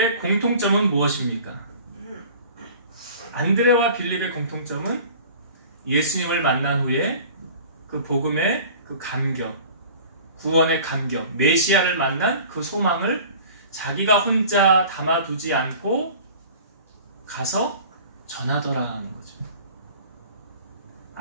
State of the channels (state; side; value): inverted; both; correlation -0.43